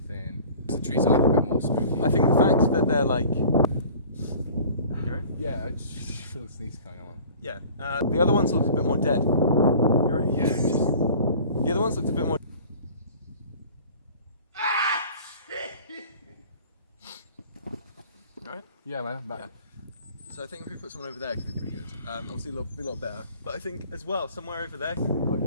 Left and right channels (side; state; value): both; inverted; correlation -0.45